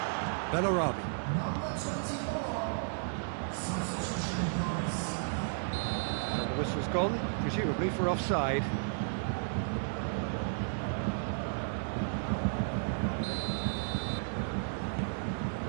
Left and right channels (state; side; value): silent; left; digital silence